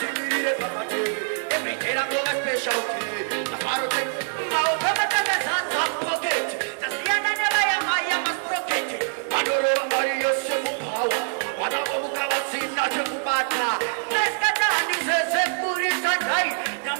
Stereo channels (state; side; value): silent; left; digital silence